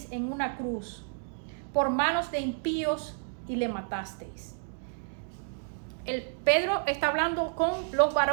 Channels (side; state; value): left; silent; digital silence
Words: en una cruz por manos de impíos y le matasteis. Pedro está hablando con los